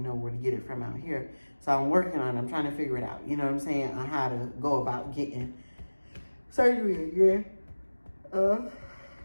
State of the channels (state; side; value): inverted; both; correlation -1.00